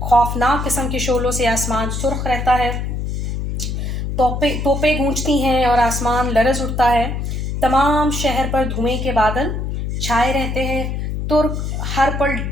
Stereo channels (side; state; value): left; noise; hum, 3 dB below the sound